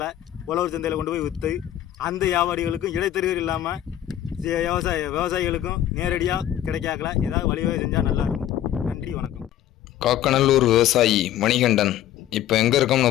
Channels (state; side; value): quieter; right; 12.0 dB